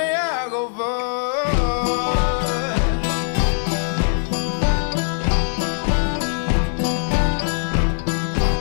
I go forward.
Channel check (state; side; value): silent; right; digital silence